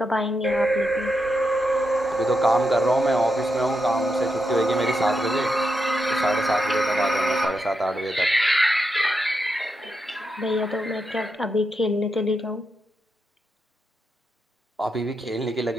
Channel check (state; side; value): normal; both; correlation 0.85